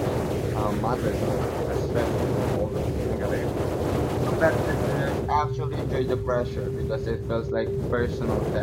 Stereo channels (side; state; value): both; identical; correlation 1.00